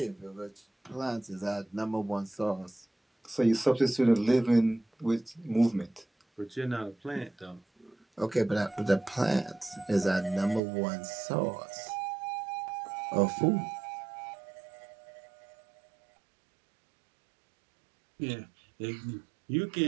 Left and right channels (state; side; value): drops out; left; at 10.6 s